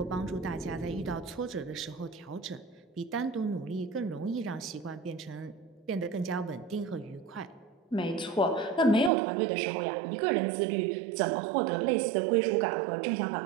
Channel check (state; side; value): drops out; left; at 9.1 s